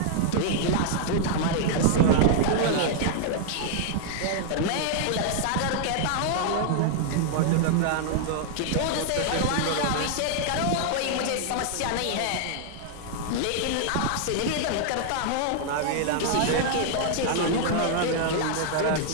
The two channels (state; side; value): different; both; correlation -0.01